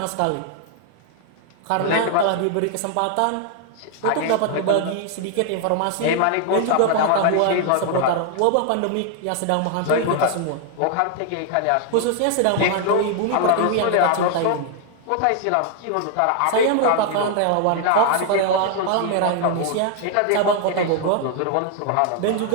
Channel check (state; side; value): different; both; correlation 0.00